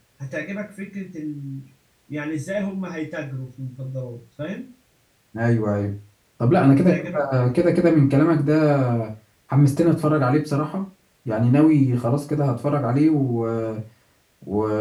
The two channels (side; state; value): both; identical; correlation 1.00